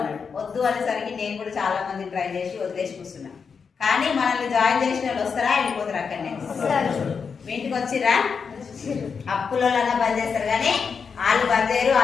వద్దు అనేసరికి నేను కూడా చాలా మంది ట్రై చేసి వదిలేసి కూర్చున్నా. కానీ మనల్ని జాయిన్ చేసిన వాళ్ళు వస్తారా, వెళ్ళిపోతారు అక్కడనే? మీ ఇంటికి వచ్చిరా? అప్పులో బంద్ చేస్తారు కానీ వాళ్ళు బంద్ చేయరు,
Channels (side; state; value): right; quieter; 5.8 dB